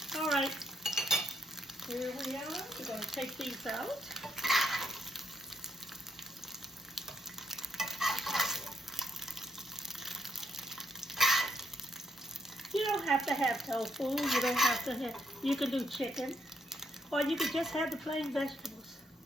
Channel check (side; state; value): both; normal; correlation 0.77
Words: All right. Here we are. We're going to take these out. You don't have to have tofu. You don't have to have, you can do chicken. Or you could just have the plain vegetables.